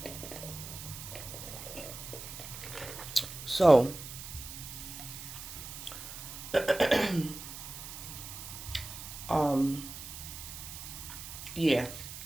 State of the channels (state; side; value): noise; right; hiss, 10 dB below the sound